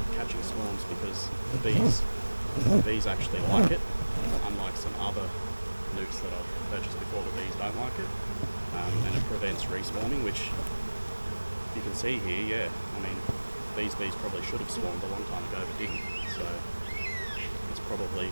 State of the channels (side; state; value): both; inverted; correlation -1.00